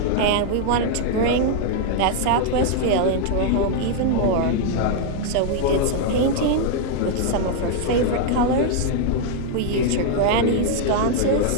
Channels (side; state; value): both; different; correlation 0.00